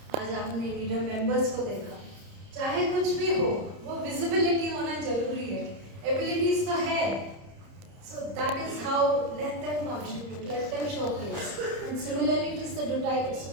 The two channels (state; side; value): late; left; 30 ms